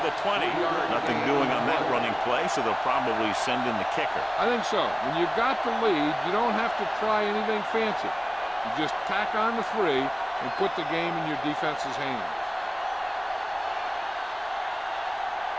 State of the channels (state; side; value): identical; both; correlation 1.00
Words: the 20. Nothing doing on that running play, so they'll probably send in the kicker. I think so. When you've got the lead, you don't have to try anything fancy. You just tack on the 3 and put the game in your defense's hands.